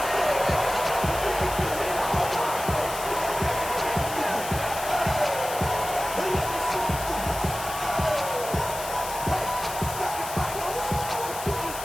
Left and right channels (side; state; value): left; noise; hiss, 9 dB below the sound